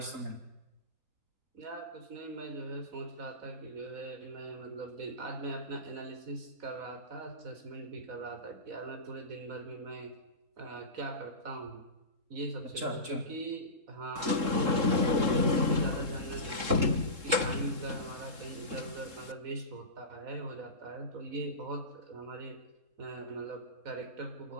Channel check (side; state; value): left; late; 3.7 ms